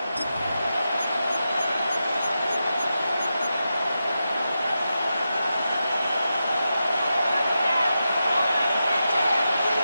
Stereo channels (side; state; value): both; inverted; correlation -0.89